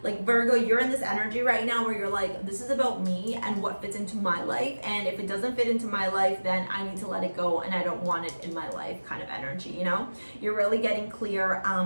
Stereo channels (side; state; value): both; inverted; correlation -1.00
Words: Like Virgo, you're in this energy right now where you're like, this is about me and what fits into my life. And if it doesn't fit into my life, then I need to let it go and I don't want it in my life kind of energy, you know? You're really getting clear